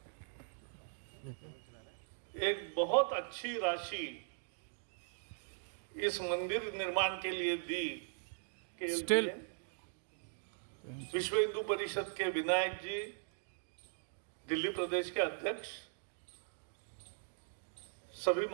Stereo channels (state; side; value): silent; left; digital silence